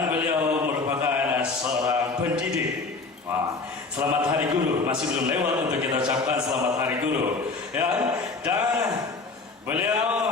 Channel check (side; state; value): right; quieter; 4.0 dB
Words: beliau merupakan seorang pendidik. Selamat Hari Guru, masih belum lewat untuk kita ucapkan selamat Hari Guru, ya. Dan